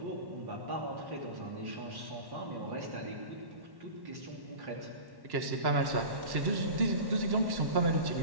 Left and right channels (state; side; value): late; left; 1.1 ms